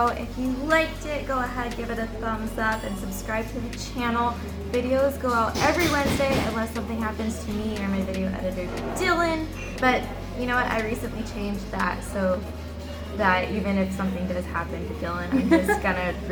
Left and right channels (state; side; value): identical; both; correlation 1.00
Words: If you liked it, go ahead, give it a thumbs up and subscribe to the channel. Videos go out every Wednesday unless something happens to me or my video editor, Dylan. But you know what? I recently changed that so that even if something does happen to Dylan, I'm just gonna